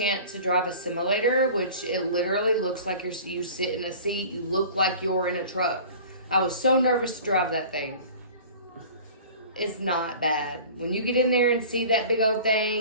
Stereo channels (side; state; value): both; inverted; correlation -0.42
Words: to drive a simulator, which it literally looks like you sit in a seat. You look like you're in a truck. I was so nervous to drive that thing. It's not bad. When you get in there and see that big old